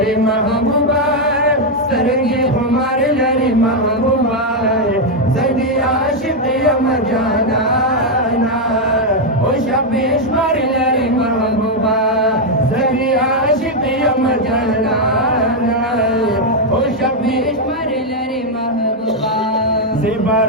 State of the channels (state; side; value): normal; both; correlation 0.01